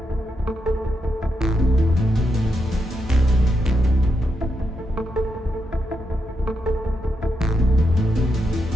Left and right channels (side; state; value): both; normal; correlation 0.83